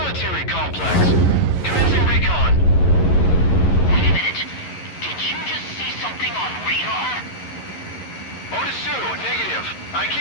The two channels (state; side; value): late; right; 11 ms